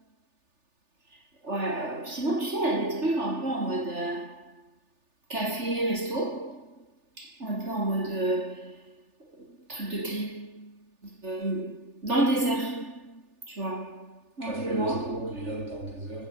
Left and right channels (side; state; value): left; late; 3.4 ms